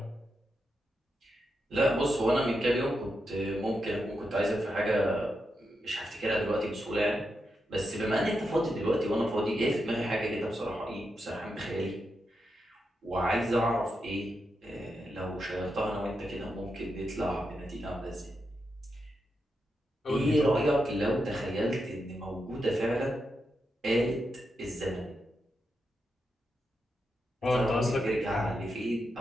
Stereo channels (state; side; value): normal; both; correlation 0.86